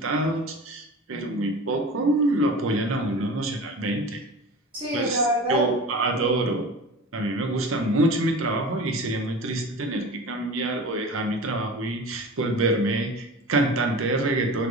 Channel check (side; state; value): both; normal; correlation 0.35